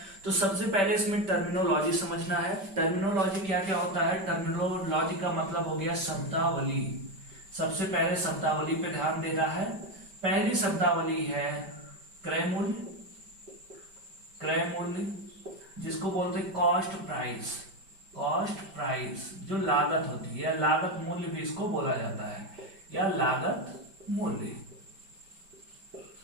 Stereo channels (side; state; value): left; late; 5.1 ms